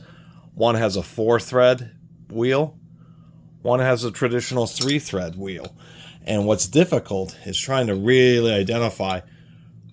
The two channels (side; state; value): both; identical; correlation 1.00